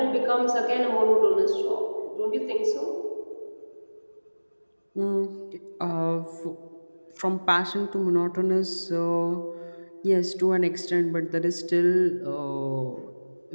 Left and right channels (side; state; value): both; inverted; correlation -1.00